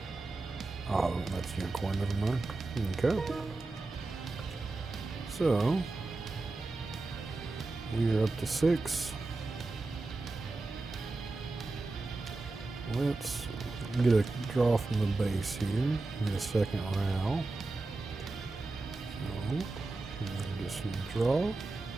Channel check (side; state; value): left; quieter; 3.3 dB